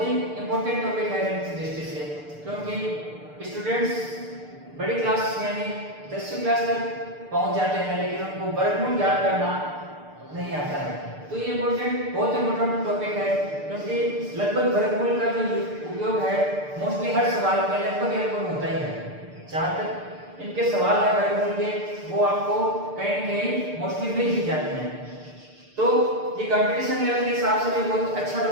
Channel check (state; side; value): late; left; 6.7 ms